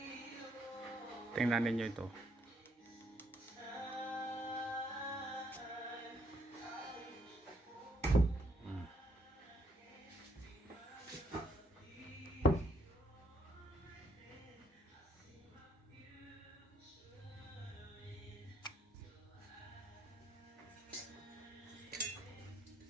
Tingnan ninyo ito.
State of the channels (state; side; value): normal; both; correlation 0.71